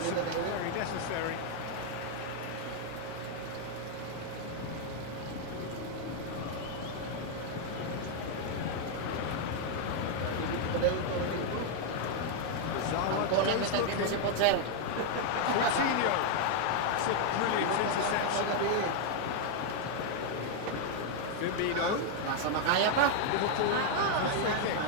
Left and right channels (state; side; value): different; both; correlation 0.00